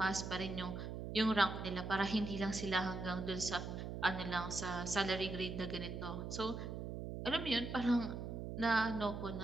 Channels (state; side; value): noise; right; hum, 6 dB below the sound